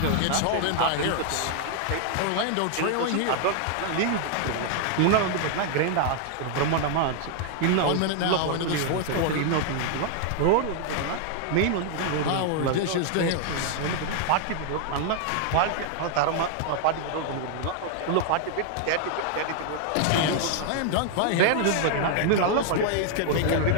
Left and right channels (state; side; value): different; both; correlation 0.00